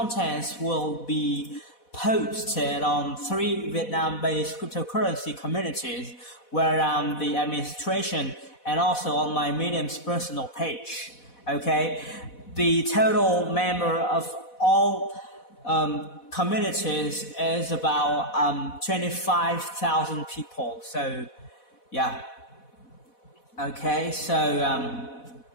will be posted on 3 Vietnam-based cryptocurrency communities where I'm the administration, and also on my Medium's personal page. The total member of all communities is about 25,000 people. So yeah. So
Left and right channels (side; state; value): right; late; 4.1 ms